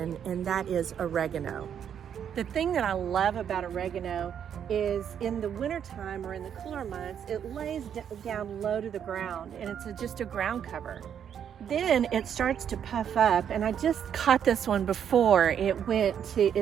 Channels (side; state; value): left; quieter; 8.6 dB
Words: and that is oregano. The thing that I love about oregano is in the wintertime or in the cooler months, it lays down low to the ground and it's just a ground cover. Then it starts to puff up, and I just caught this one before